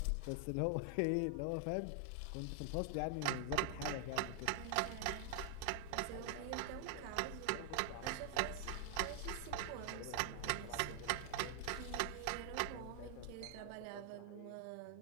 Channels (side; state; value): both; different; correlation 0.00